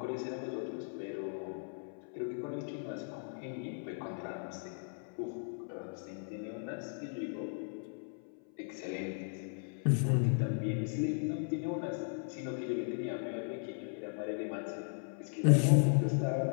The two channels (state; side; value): silent; right; 53 dB below the other